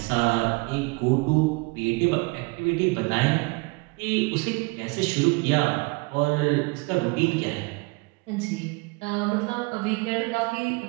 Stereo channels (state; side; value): quieter; left; 27.5 dB